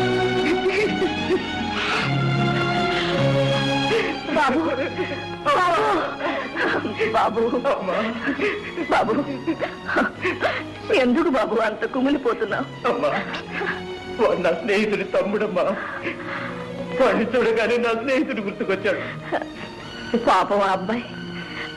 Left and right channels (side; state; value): both; identical; correlation 1.00